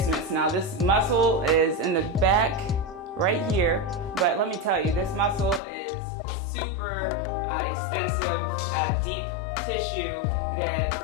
Now this muscle is in the back right here, but let me tell you, this muscle is super extensive, deep tissue that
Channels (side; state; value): right; drops out; at 5.6 s